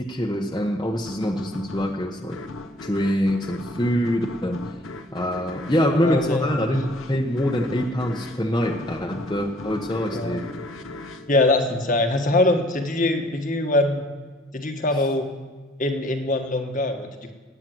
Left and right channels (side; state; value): both; normal; correlation 0.57